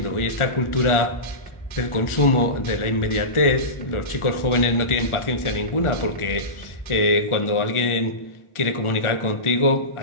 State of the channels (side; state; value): right; late; 1.4 ms